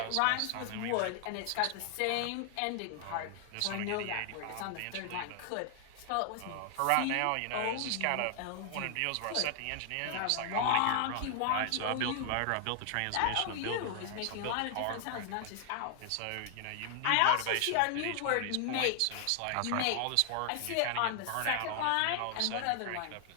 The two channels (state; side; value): different; both; correlation 0.00